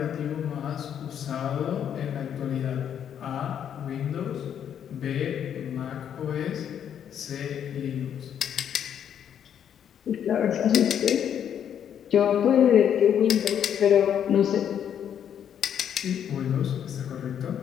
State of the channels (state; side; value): quieter; right; 9.1 dB